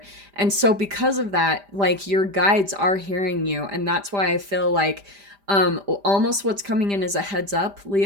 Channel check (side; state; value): left; late; 5.0 ms